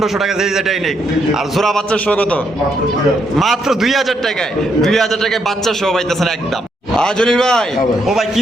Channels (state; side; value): normal; both; correlation 0.77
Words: টাকা যেই যেটাই নিক আর জোড়া বাচ্চা সহ কত মাত্র 2000 টাকায় 2000 টাকায় বাচ্চা সহ পাইতেছেন একদম জলিল ভাই হ্যাঁ ভাই। ও ভাই কি